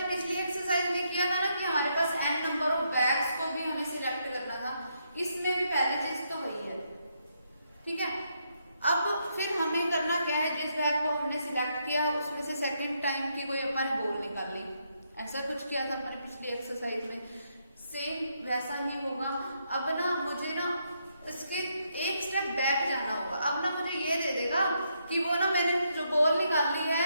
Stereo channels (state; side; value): inverted; both; correlation -0.77